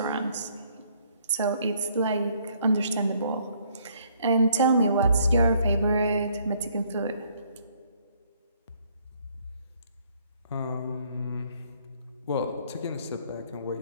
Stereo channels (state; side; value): inverted; both; correlation -0.65